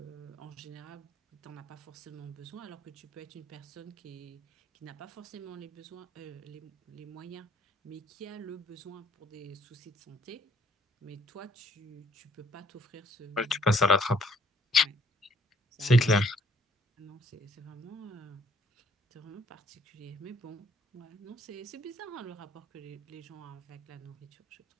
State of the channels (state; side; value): normal; both; correlation 0.64